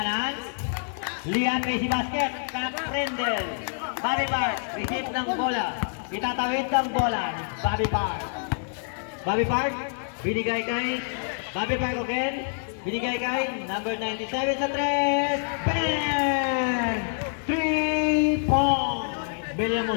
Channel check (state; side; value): silent; right; 60 dB below the other